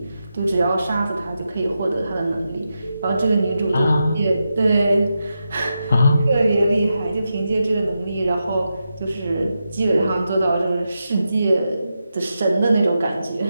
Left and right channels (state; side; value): inverted; both; correlation -0.88